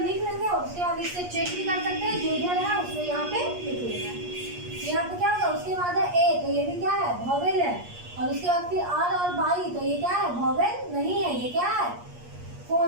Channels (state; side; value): late; left; 8.4 ms